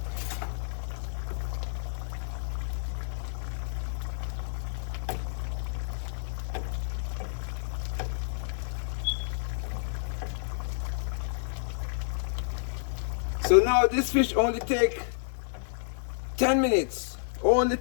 So now this fish only take 10 minutes. Only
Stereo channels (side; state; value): right; silent; digital silence